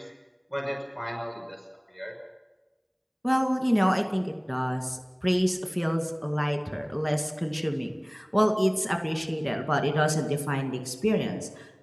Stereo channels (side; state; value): both; identical; correlation 1.00